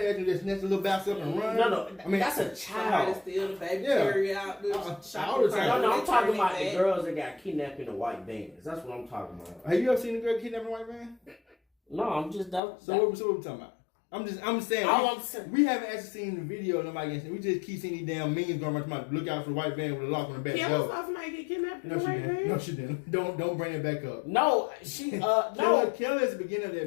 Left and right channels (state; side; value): drops out; right; at 12.6 s